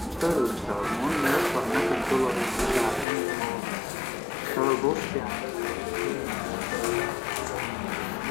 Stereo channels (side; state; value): right; drops out; at 3.1 s